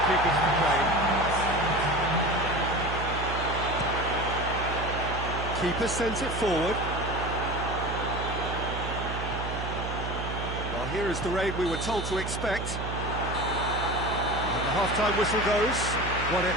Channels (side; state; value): right; noise; hum, 5 dB below the sound